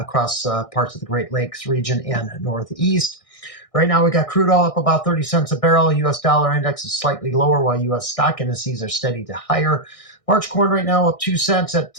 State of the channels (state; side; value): late; right; 1.6 ms